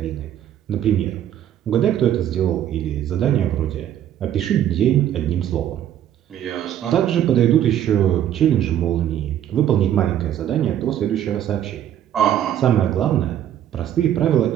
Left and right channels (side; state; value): left; quieter; 10.9 dB